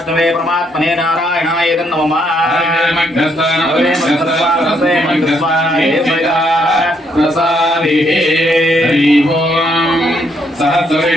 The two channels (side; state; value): both; normal; correlation 0.73